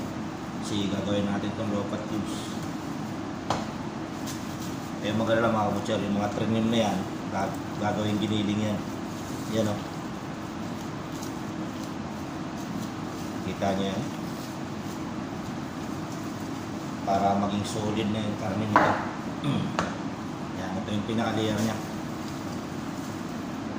Kasi gagawin natin itong lopat cubes. Eh maganda lang mga butcher. Yung mga trinim na yan, gagawin giniling yan. Yan o. Kita nyo yan. Para maging solid na yung karne nito. Yan, ito yung pinaka-layer nya.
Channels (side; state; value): both; identical; correlation 1.00